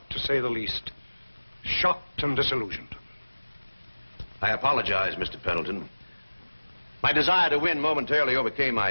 to say the least. Shocked and disillusioned. I apologize, Mr. Pendleton. My desire to win momentarily overcame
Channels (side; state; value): both; inverted; correlation -1.00